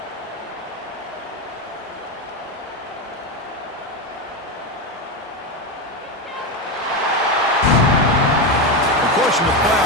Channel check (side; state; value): both; normal; correlation 0.13